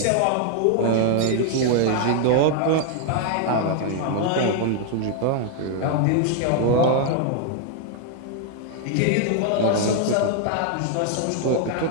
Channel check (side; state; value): both; different; correlation 0.00